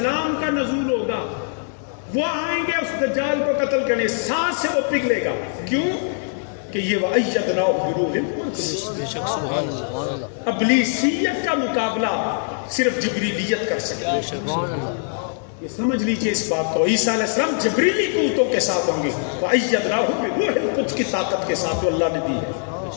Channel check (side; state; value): right; silent; 64 dB below the other